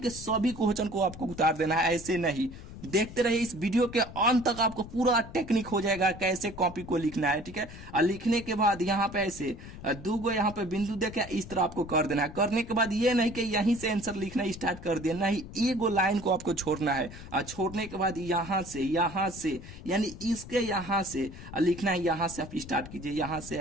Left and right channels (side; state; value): left; noise; rumble, 14 dB below the sound